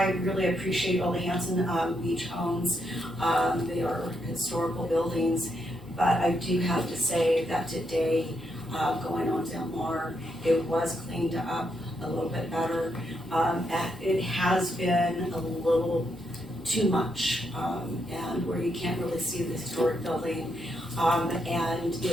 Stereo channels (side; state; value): both; normal; correlation 0.79